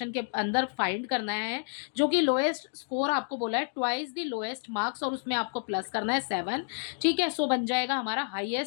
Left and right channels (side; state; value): right; silent; digital silence